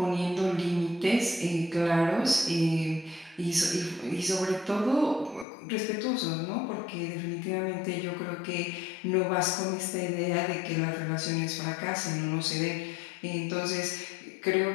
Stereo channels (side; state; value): right; drops out; at 5.5 s